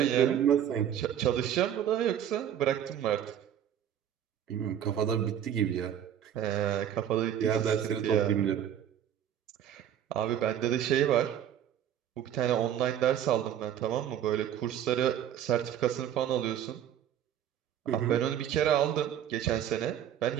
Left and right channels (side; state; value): left; quieter; 10.1 dB